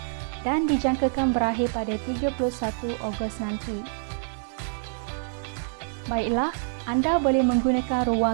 dan dijangkakan berakhir pada 31 Ogos nanti. Baiklah, anda boleh menggunakan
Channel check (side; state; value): left; silent; 61 dB below the other